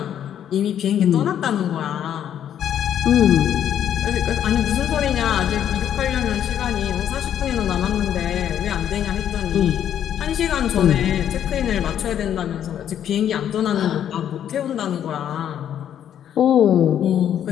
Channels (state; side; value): quieter; right; 9.9 dB